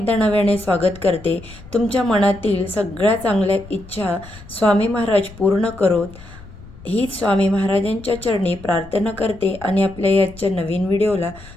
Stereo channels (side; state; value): left; noise; rumble, 19 dB below the sound